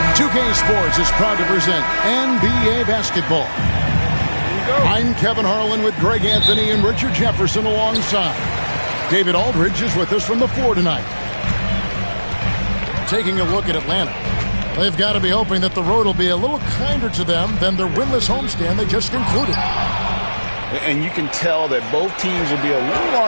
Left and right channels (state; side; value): inverted; both; correlation -1.00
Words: 2K Sports is proud to present NBA basketball. I'm Kevin Harlan with Greg Anthony and Richard Jefferson alongside. David Aldridge is with us from the floor tonight. Taking a look at Atlanta. They've got to be hoping that the road will be a little kinder to them than their winless homestand they just concluded. And you can tell that both teams will be a little